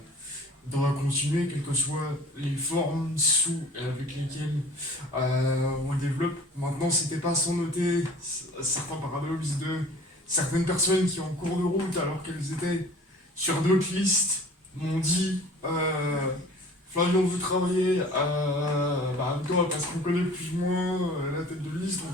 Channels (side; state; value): both; normal; correlation 0.47